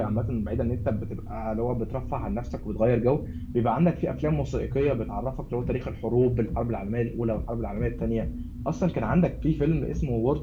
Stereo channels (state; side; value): identical; both; correlation 1.00